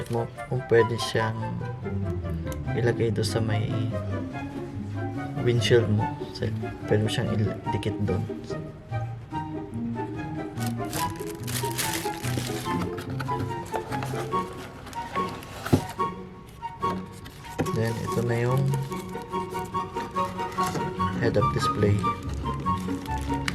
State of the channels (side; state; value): both; identical; correlation 1.00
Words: mo kung pwede siyang ilagay doon sa may windshield mo. So, pwede mo siyang idikit doon. Then, ito na yung head-up display.